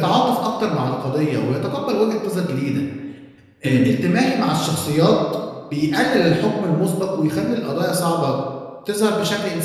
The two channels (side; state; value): both; identical; correlation 1.00